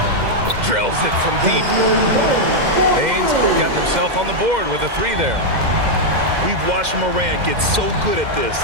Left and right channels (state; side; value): late; left; 2.1 ms